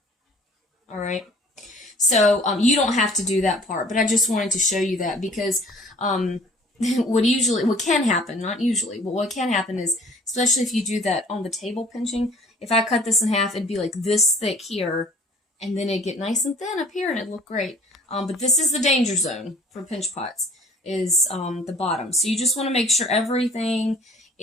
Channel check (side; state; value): both; normal; correlation 0.51